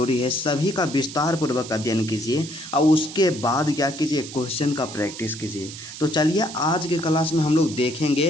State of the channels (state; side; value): noise; right; hiss, 12 dB below the sound